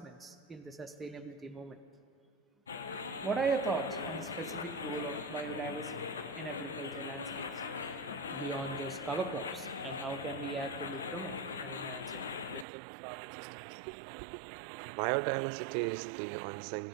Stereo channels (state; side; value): drops out; left; at 12.7 s